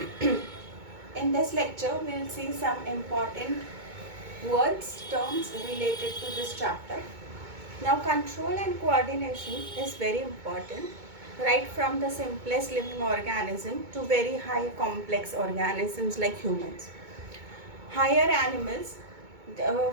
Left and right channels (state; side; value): late; left; 2.2 ms